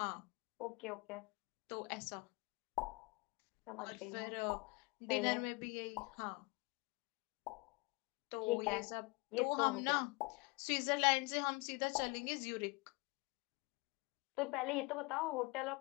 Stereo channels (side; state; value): right; quieter; 27.6 dB